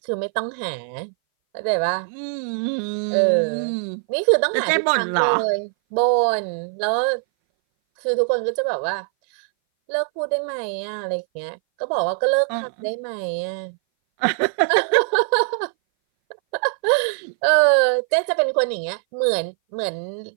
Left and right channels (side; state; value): left; silent; 60 dB below the other